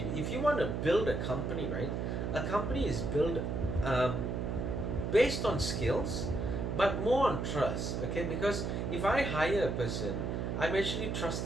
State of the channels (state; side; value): noise; right; hum, 2 dB below the sound